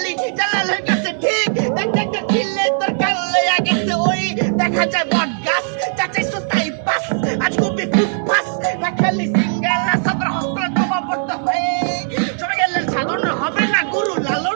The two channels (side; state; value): left; silent; digital silence